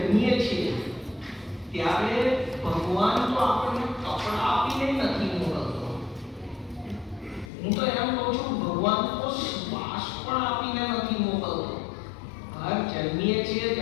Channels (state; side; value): drops out; right; at 7.5 s